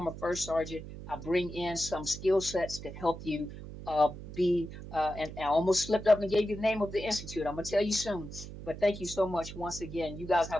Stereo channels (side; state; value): right; noise; hum, 12 dB below the sound